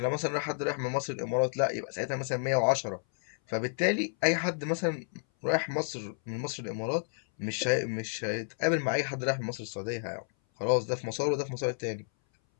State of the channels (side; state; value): right; silent; 57 dB below the other